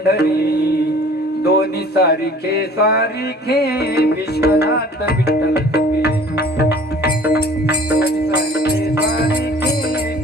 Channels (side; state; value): both; normal; correlation 0.49